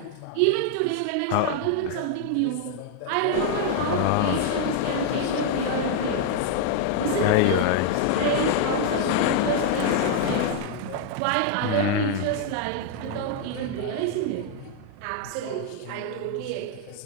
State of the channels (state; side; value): different; both; correlation 0.00